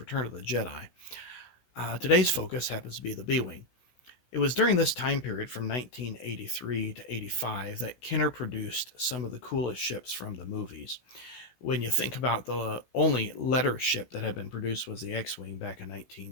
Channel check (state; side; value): late; right; 16 ms